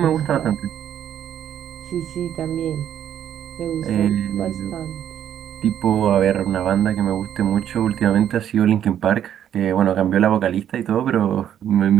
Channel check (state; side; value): quieter; left; 10.1 dB